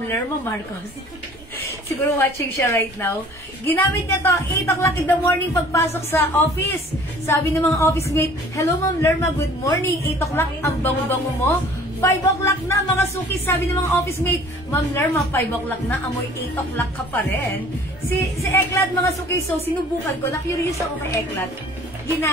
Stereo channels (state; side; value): noise; right; rumble, 23 dB below the sound